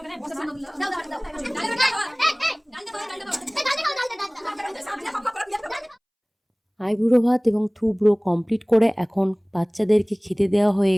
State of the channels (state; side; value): identical; both; correlation 1.00